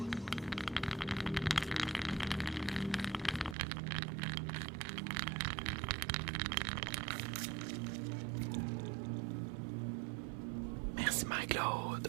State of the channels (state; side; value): drops out; left; at 3.6 s